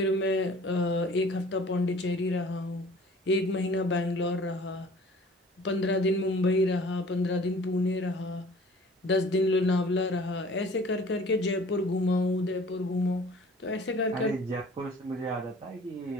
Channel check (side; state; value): both; normal; correlation 0.50